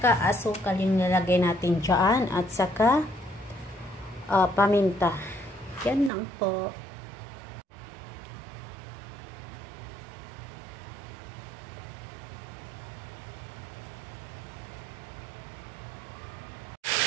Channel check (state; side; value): drops out; left; at 6.1 s